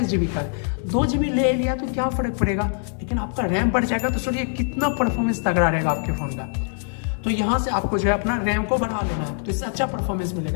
GB का है, 2 GB ले लिया तो क्या फर्क पड़ेगा, लेकिन आपका रैम बढ़ जाएगा। तो सोचिए कितना परफॉर्मेंस तगड़ा रहेगा आपके फ़ोन का। तो यहाँ से आपको जो है अपना रैम को बढ़ा लेना है, तो इससे अच्छा परफॉर्मेंस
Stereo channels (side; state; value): right; silent; 56 dB below the other